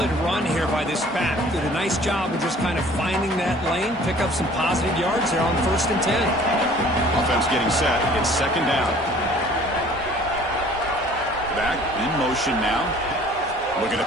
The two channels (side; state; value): both; normal; correlation 0.52